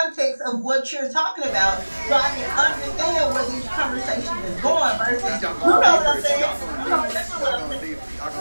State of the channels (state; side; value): inverted; both; correlation -1.00